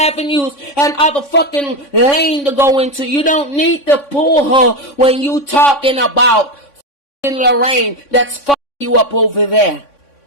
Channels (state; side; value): late; right; 3.5 ms